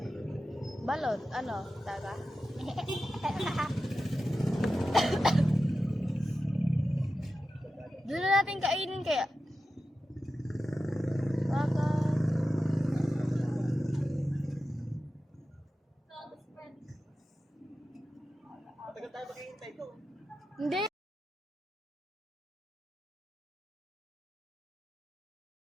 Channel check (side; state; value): both; normal; correlation 0.92